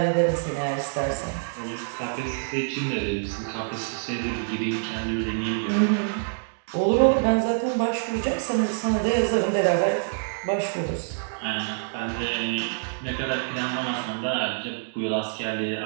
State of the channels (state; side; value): silent; left; digital silence